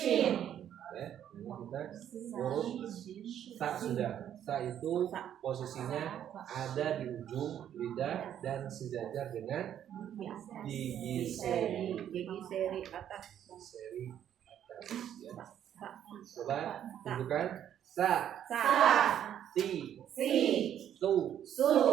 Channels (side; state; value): left; quieter; 10.2 dB